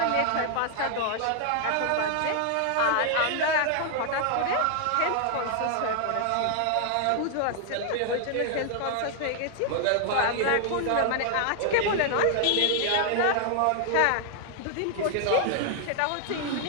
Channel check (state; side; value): different; both; correlation 0.00